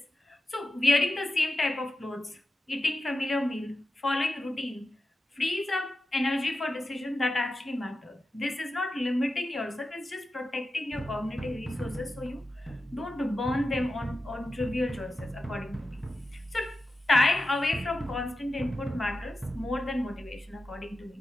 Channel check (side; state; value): both; normal; correlation 0.92